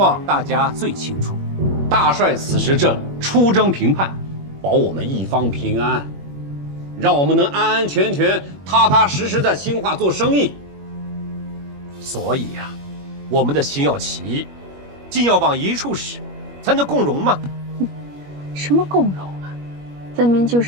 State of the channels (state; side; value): late; left; 21 ms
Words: 大家最清楚。大帅此时正出征平叛，保我们一方平安，让我们能安安全全、踏踏实实在兴化做生意。所以呀，我们的心要齐，劲要往一处使，才能共荣嘛。什么共荣啊？分明就